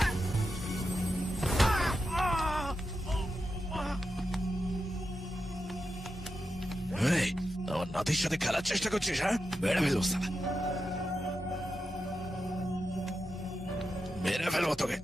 এই, আমার নাতির সাথে খেলার চেষ্টা করছিস? হ্যাঁ, মেরে ফেলবো শালা, মেরে ফেলবো তোকে,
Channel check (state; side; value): normal; both; correlation 0.88